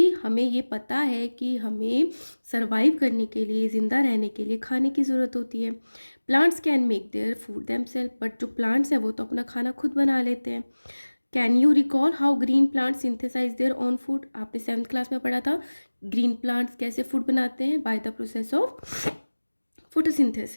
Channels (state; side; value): inverted; both; correlation -1.00